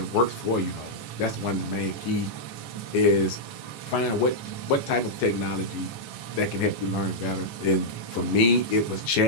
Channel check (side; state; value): right; late; 14 ms